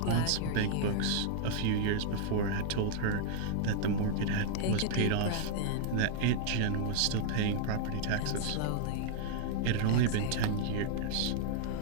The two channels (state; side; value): different; both; correlation -0.01